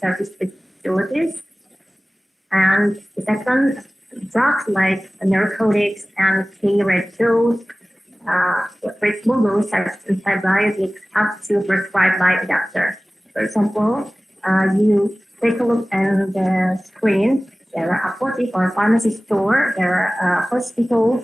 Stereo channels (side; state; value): both; normal; correlation 0.98